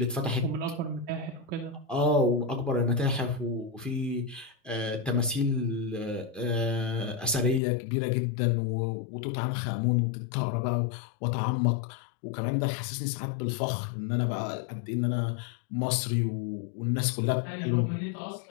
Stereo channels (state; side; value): drops out; right; at 7.6 s